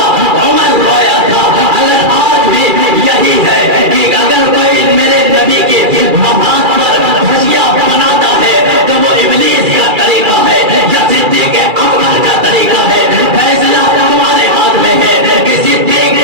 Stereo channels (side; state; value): left; late; 2.4 ms